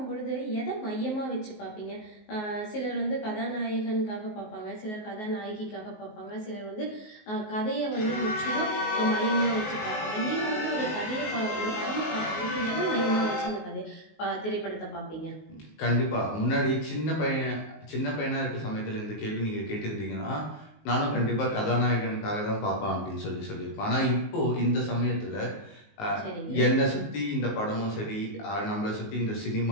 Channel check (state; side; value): late; right; 19 ms